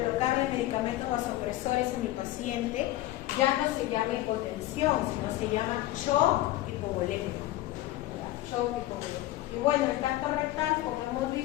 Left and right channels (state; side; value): quieter; right; 15.8 dB